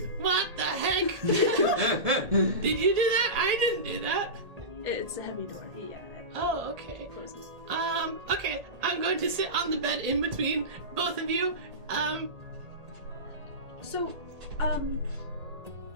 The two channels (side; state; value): left; late; 1.8 ms